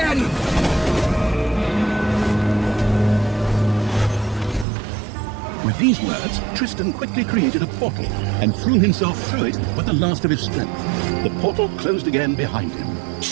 With these words, Tristan quickly created a portal and threw himself through it with the last of his strength. The portal closed again behind him.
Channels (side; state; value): left; drops out; at 4.7 s